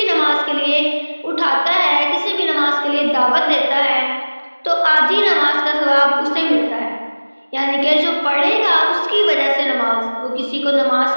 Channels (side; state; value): both; inverted; correlation -1.00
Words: नमाज के लिए उठाता है, किसी भी नमाज के लिए दावत देता है, तो आधी नमाज का सवाब उसे मिलता है, यानी कि जो पढ़ेगा उसकी वजह से नमाज, वो किसी को नमाज